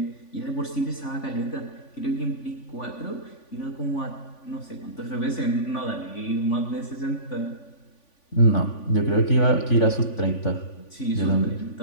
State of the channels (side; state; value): right; late; 3.5 ms